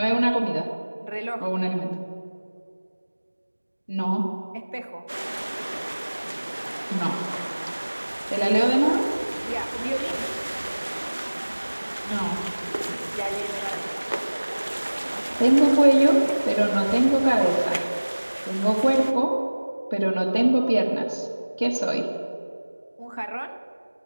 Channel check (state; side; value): inverted; both; correlation -1.00